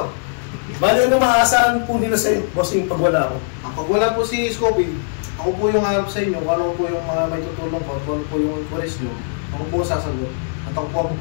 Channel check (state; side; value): silent; right; 60 dB below the other